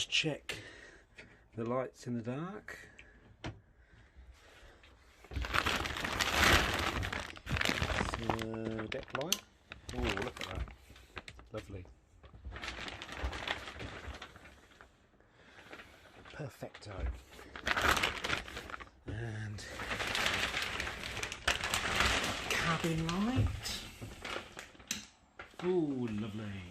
check the lights in the dark. So, deck light. Oh, look at that. Lovely. Perfecto. And cabin light. Oh,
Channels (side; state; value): both; identical; correlation 1.00